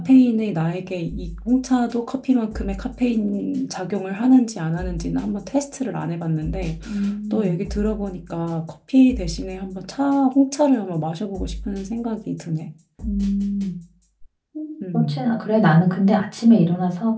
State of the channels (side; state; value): both; identical; correlation 1.00